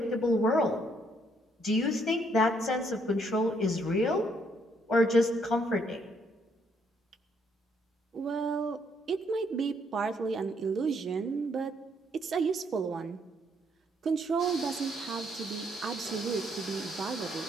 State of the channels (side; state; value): both; normal; correlation 0.71